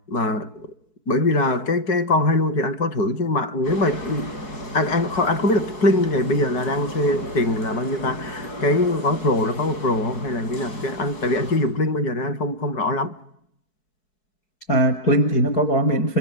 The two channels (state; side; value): late; right; 4.7 ms